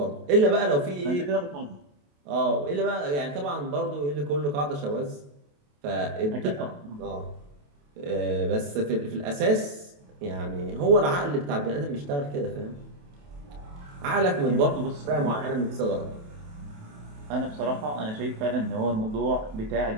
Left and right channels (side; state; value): left; late; 28 ms